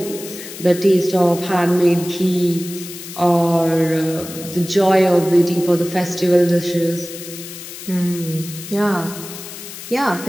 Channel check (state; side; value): noise; left; hiss, 12 dB below the sound